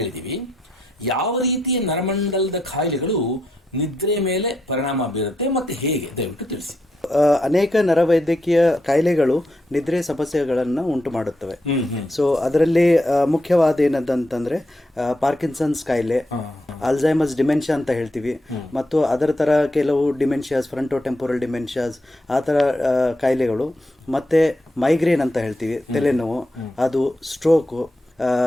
ಯಾವ ರೀತಿಯ ನರಮಂಡಲದ ಕಾಯಿಲೆಗಳು ನಿದ್ರೆ ಮೇಲೆ ಪರಿಣಾಮ ಬೀರುತ್ತೆ ಮತ್ತೆ ಹೇಗೆ, ದಯವಿಟ್ಟು ತಿಳಿಸಿ. ಅನೇಕ ನರವೈದ್ಯಕೀಯ ಕಾಯಿಲೆಗಳು ನಿದ್ರೆ ಸಮಸ್ಯೆಗಳನ್ನು ಉಂಟು ಮಾಡುತ್ತವೆ. ಸೊ ಅದರಲ್ಲಿ ಮುಖ್ಯವಾದ ಏನಂತಂದ್ರೆ ಪಾರ್ಕಿನ್ಸನ್ಸ್ ಕಾಯಿಲೆ, ಅಲ್ಝೈಮರ್ಸ್ ಡಿಮೆನ್ಷಿಯಾ ಅಂತ ಹೇಳ್ತೀವಿ, ಮತ್ತು ಅದರ ತರ ಕೆಲವು ಡಿಮೆನ್ಷಿಯಾಸ್, ಫ್ರಂಟೋಟೆಂಪೋರಲ್ ಡಿಮೆನ್ಷಿಯಾಸ್, ಆ ತರ ಕಾಯಿಲೆಗಳು, ಮತ್ತೆ ಮೈಗ್ರೇನ್ ಅಂತ ಹೇಳ್ತೀವಿ, ತಲೆನೋವು, ಅದು ಸ್ಟ್ರೋಕು,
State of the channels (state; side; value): normal; both; correlation 0.82